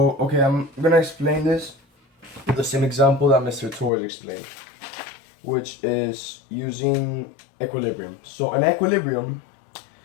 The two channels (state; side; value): drops out; right; at 3.9 s